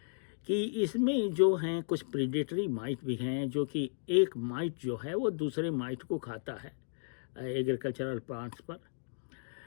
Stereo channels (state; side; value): silent; right; digital silence